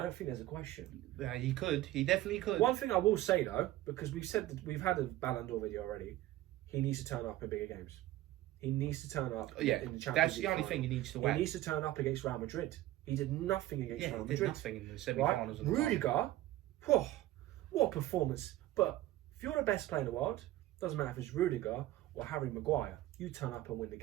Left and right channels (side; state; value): left; quieter; 15.5 dB